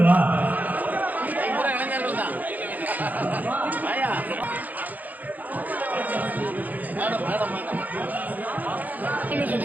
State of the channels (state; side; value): late; left; 0.081 ms